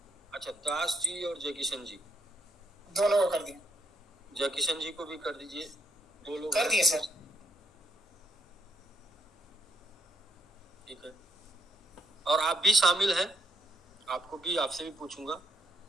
अच्छा, दास जी और जय किशन जी दोनों को कर दिया। जय किशन जी को भी कर दीजिए, 2 लोग कर दिए सर। ठीक है, और आप भी शामिल हैं, आपको भी, आपसे भी पूछूंगा।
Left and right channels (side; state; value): both; normal; correlation 0.76